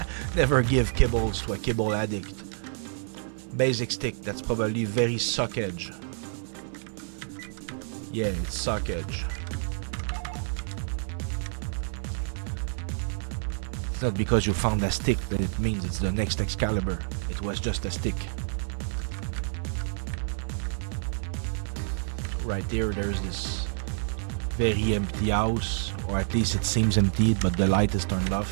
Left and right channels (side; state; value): left; silent; digital silence